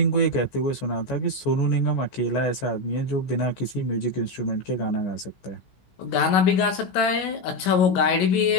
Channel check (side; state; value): right; late; 16 ms